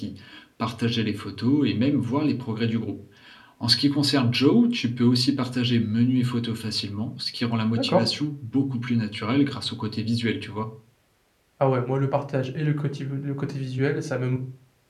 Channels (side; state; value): both; identical; correlation 1.00